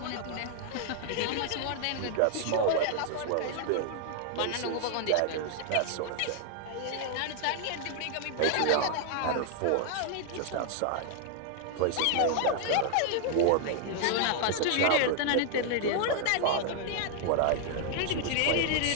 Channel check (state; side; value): different; both; correlation 0.00